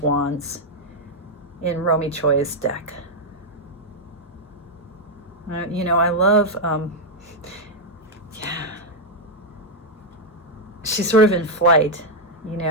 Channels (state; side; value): normal; both; correlation -0.01